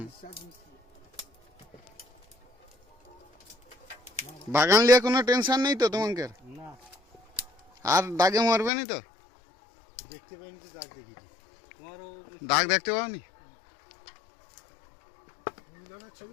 ডিসচার্জ মিস্ত্রি বাগান নিয়ে কোনো টেনশন নেই তো তোমাকে না আর দাগে মারবে নি তো দেখতে পাইনি তো দাগ দেখেছি তোমারও দাগ দেখতে পাওনি মিলনের ছবি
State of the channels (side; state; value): right; drops out; at 8.7 s